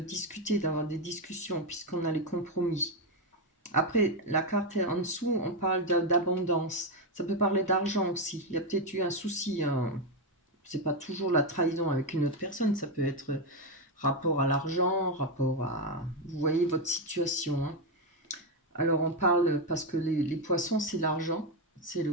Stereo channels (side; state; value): both; normal; correlation 0.07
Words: d'avoir des discussions, puisqu'on a les compromis. Après, la carte en dessous, on parle d'abondance. Ça peut parler d'argent aussi. Il y a peut-être eu un souci. C'est pas toujours la trahison avec une autre personne. Ça peut être rapport à l'argent, rapport à... Vous voyez votre situation. Alors on parle, parce que les poissons, c'est l'argent, c'est le